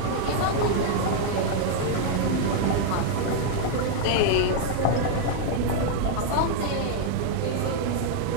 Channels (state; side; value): different; both; correlation 0.00